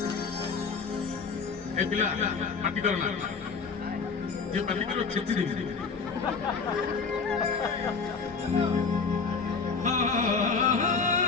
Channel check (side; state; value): right; quieter; 5.0 dB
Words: ए पिला पार्टी करो ना ये पार्टी करो छेची दे